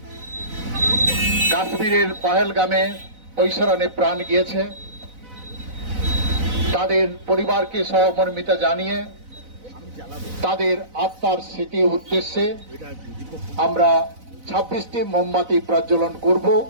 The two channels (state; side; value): late; left; 4.0 ms